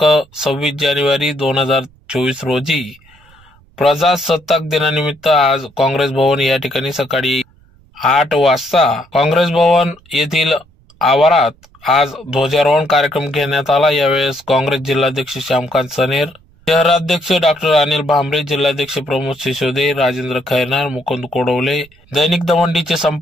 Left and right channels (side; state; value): right; noise; rumble, 29 dB below the sound